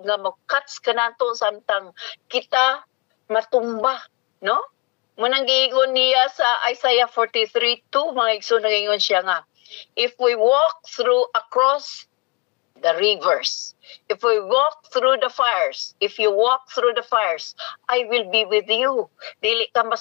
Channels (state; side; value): quieter; right; 28.0 dB